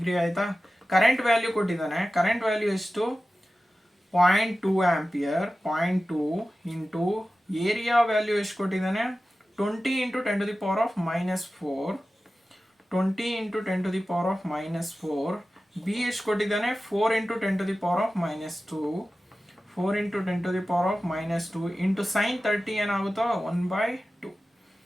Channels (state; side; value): normal; both; correlation 0.95